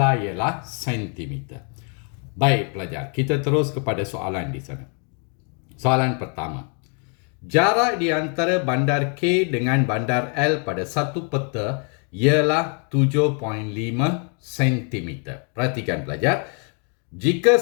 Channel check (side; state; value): right; quieter; 39.5 dB